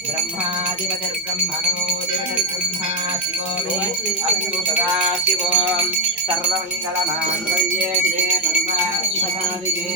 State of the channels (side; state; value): both; normal; correlation 0.05